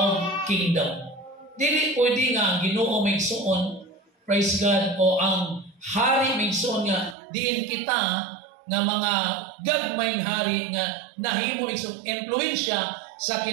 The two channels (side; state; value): left; drops out; at 7.2 s